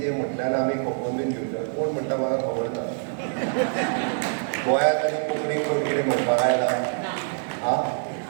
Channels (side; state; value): left; silent; 55 dB below the other